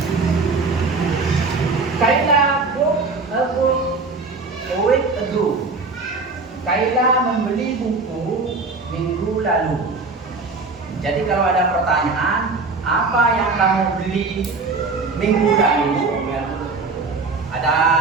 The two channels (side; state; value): left; quieter; 4.0 dB